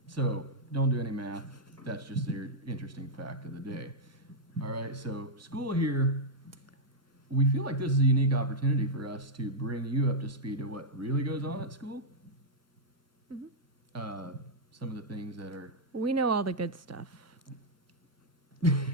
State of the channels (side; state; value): both; normal; correlation -0.05